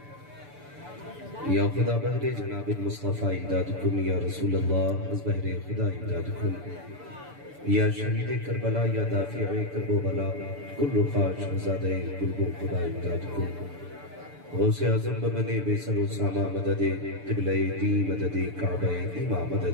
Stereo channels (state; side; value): late; left; 6.9 ms